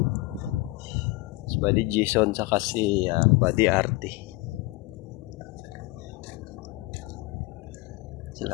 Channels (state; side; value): quieter; right; 21.3 dB